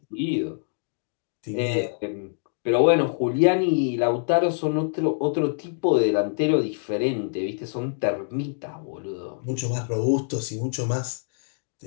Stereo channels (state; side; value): silent; right; digital silence